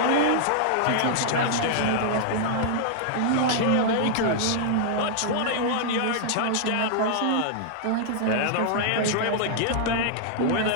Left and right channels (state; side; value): different; both; correlation -0.01